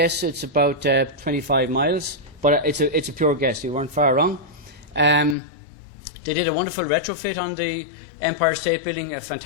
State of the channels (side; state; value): right; drops out; at 5.4 s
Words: it's about 25 miles, but it's a pure guess. You weren't far wrong. They did a wonderful retrofit on the Empire State Building, a